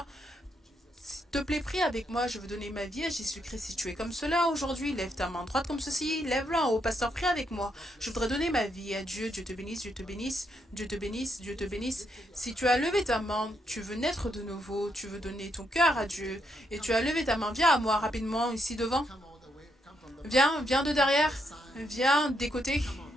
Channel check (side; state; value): both; normal; correlation 0.78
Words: s'il te plaît, prie avec moi. Je veux donner ma vie à Jésus-Christ. Si tu es comme cela aujourd'hui, lève ta main droite comme ceci. Lève-la en haut. Pasteur, prie avec moi. Je voudrais donner ma vie à Dieu. Dieu te bénisse, Dieu te bénisse, Dieu te bénisse, Dieu te bénisse. Si tu as levé ta main, tu veux naître de nouveau, tu veux donner ton cœur à Dieu, et tu as levé ta main, viens à moi rapidement ici devant. Viens de derrière. Viens des côtés.